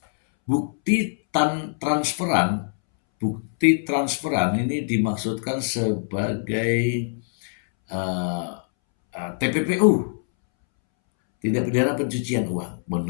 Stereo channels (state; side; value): silent; right; 63 dB below the other